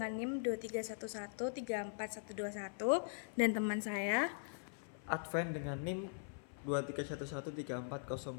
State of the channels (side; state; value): right; silent; 50 dB below the other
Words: NIM 231134121 dan teman saya Advent dengan NIM